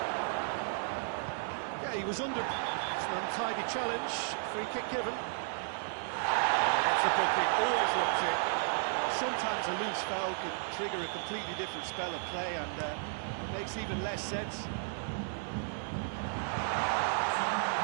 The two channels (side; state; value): left; silent; 55 dB below the other